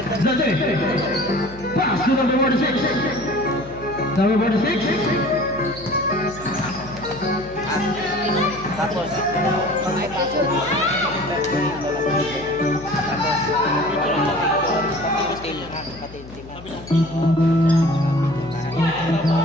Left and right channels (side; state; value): left; noise; hum, 17 dB below the sound